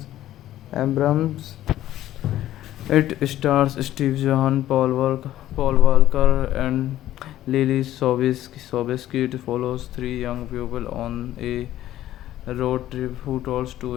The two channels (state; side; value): quieter; right; 13.4 dB